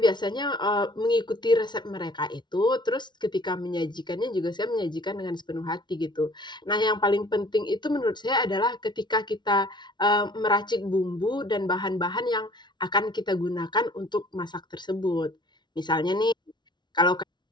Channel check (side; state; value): right; late; 0.21 ms